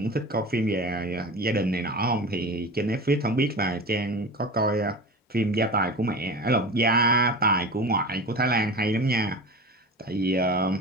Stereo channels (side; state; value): both; normal; correlation 0.32